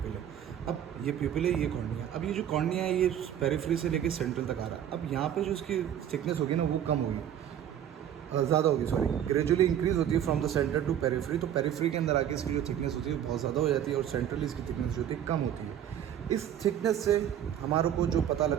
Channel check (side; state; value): left; quieter; 10.1 dB